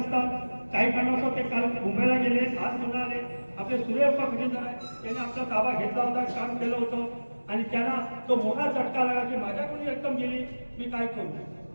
काही कारणास्तव ते काल मुंबईला गेले, आज पुन्हा आले. आपले सूर्यप्पा खजिनदार आहे, त्याने आपला ताबा घेतला होता, काम केलं होतं आणि त्यांना तो मोठा झटका लागला की माझ्याकडून रक्कम गेली, मी काय करू.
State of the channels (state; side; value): inverted; both; correlation -1.00